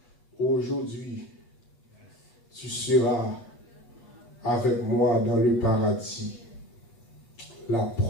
aujourd'hui, tu seras avec moi dans le paradis. La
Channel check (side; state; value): right; late; 8.3 ms